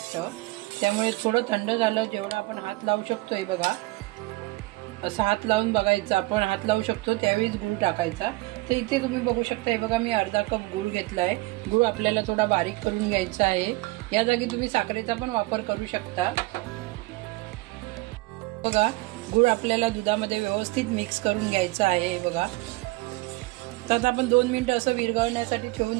त्यामुळे थोडं थंड झालं जेवढं आपण हात लावू शकतो, हे बघा असं हात लावून बघायचं, आपण हात लावू शकतो त्यावेळीच गूळ टाकायचा. तर इथे तुम्ही बघू शकता, हे बघा मी अर्धा कप गूळ घेतला आहे. गूळ आपल्याला थोडा बारीक करून घ्यायचा आहे. या जागी तुम्ही साखरेचा पण वापर करू शकता. बघा गूळ आपल्याला दुधामध्ये व्यवस्थित मिक्स करून घ्यायचं आहे. हे बघा तर आपण 2 मिनिटं असं विरघळण्यासाठी ठेवून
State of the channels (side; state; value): left; quieter; 21.9 dB